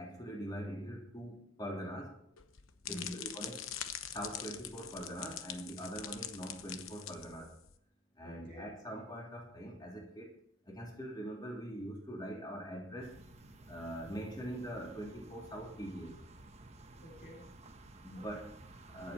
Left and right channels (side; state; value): both; normal; correlation 0.52